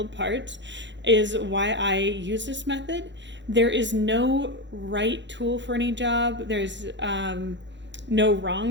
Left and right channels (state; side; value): late; left; 0.52 ms